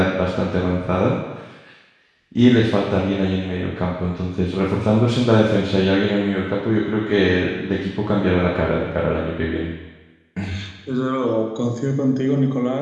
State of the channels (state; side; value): identical; both; correlation 1.00